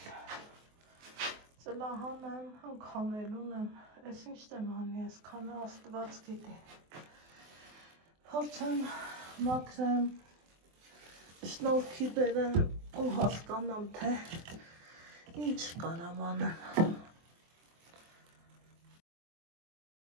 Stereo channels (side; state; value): left; late; 24 ms